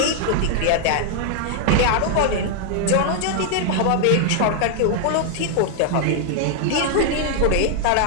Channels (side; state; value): both; different; correlation 0.00